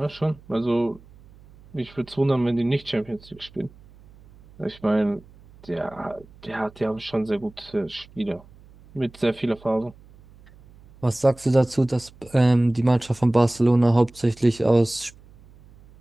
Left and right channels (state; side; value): noise; right; hum, 25 dB below the sound